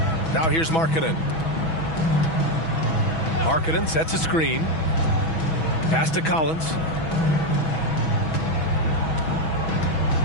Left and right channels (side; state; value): right; late; 6.1 ms